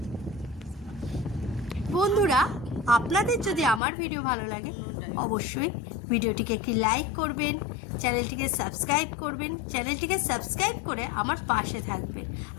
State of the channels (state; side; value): drops out; right; at 3.8 s